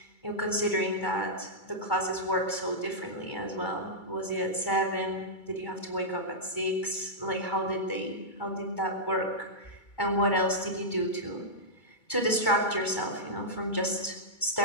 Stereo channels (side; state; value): right; late; 2.3 ms